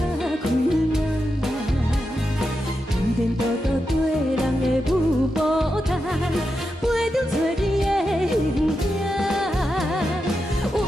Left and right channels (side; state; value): both; normal; correlation 0.88